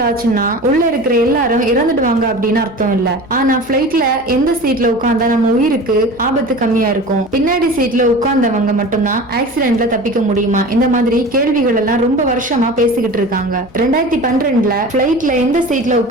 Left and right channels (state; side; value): normal; both; correlation 0.36